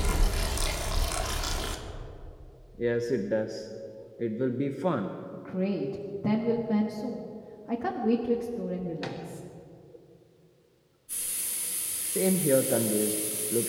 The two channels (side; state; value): both; identical; correlation 1.00